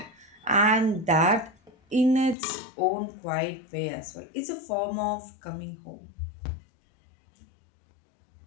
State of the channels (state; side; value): drops out; right; at 2.4 s